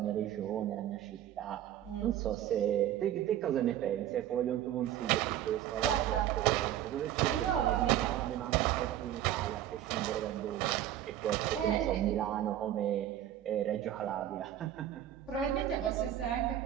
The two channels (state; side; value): quieter; left; 11.9 dB